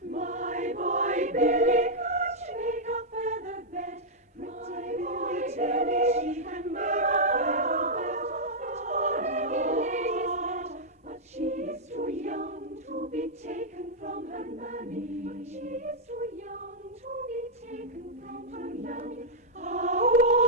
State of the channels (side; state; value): both; normal; correlation -0.07